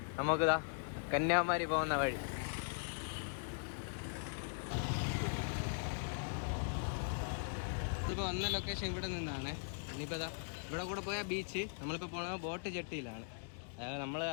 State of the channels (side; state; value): right; silent; digital silence